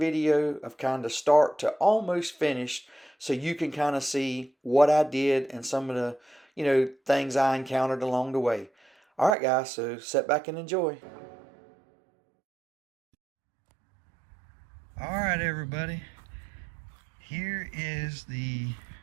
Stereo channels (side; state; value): left; drops out; at 9.3 s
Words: of kind of start to almost finished, so you can kind of see what I did and some of the, things I encountered along the way. All right, guys, so sit back and enjoy. All right, everybody. Here is the